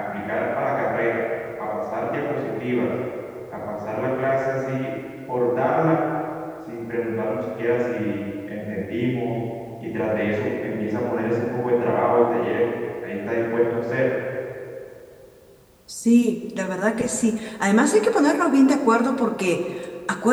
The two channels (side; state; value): both; identical; correlation 1.00